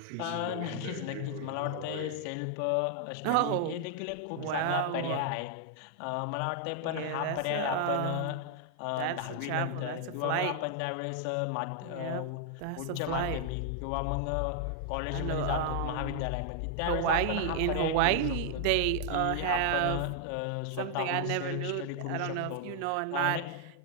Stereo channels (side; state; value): both; different; correlation 0.00